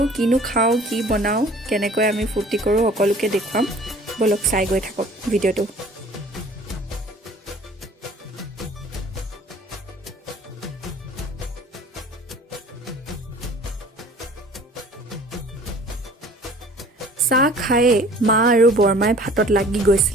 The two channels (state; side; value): normal; both; correlation 0.49